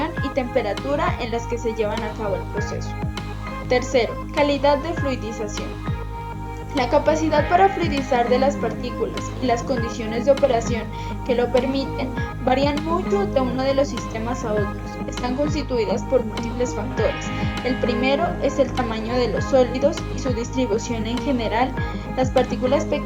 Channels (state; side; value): identical; both; correlation 1.00